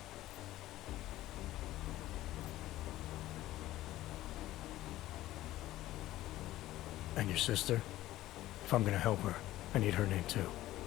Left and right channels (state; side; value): quieter; right; 15.4 dB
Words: And your sister? If I'm gonna help her, I need her name too.